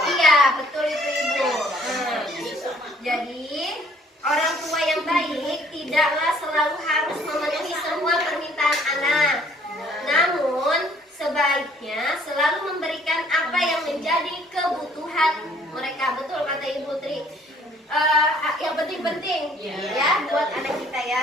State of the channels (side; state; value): both; normal; correlation 0.60